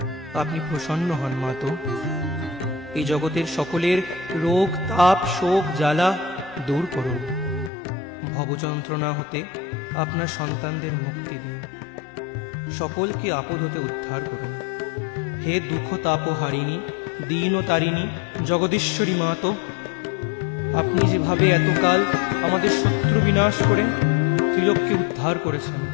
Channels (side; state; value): right; drops out; at 7.7 s